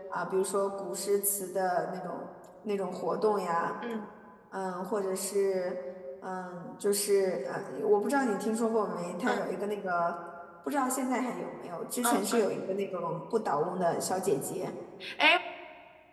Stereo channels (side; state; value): both; identical; correlation 1.00